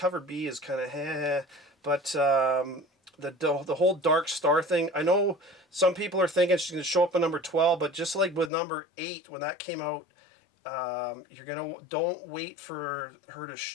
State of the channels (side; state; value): right; drops out; at 8.5 s